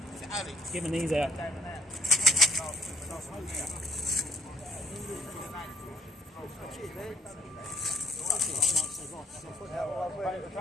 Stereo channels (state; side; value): normal; both; correlation 0.64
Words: it's Alex. Giving these out.